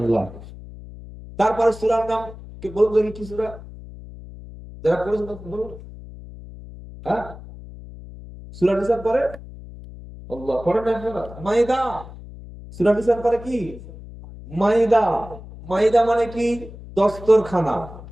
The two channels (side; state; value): left; noise; hum, 15 dB below the sound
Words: তারপর সূরার নাম কি বলুন দেখি, কি সূরা? যারা পড়েছেন বলুন। হ্যাঁ, সূরা নিসার পরে আল্লাহ পড়েন না আপনারা? মাইদা। সূরা নিসার পরে কি? মাইদা। মাইদা মানে কি? দস্তরখানা।